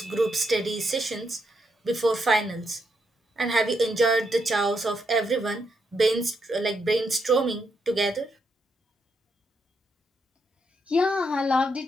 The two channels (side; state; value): both; normal; correlation 0.79